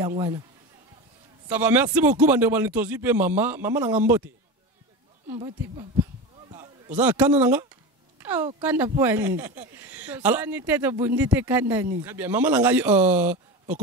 Ça va, merci beaucoup bande balitozi pe mama nanga mbote papa oza kana nanga. Oh, kanda poani. Alors, très bien. Maman Langai,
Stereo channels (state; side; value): normal; both; correlation 0.25